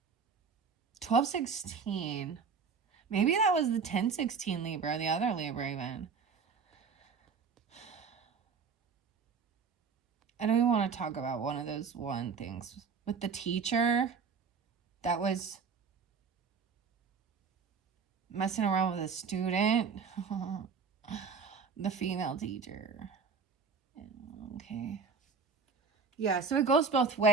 1216. Maybe that was the 1016 Libra, the other Libra even. I don't even want to talk about one of those things. With the teacher that was messing around with a student. The female teacher. Okay. Yeah, so it goes both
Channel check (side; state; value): left; quieter; 5.5 dB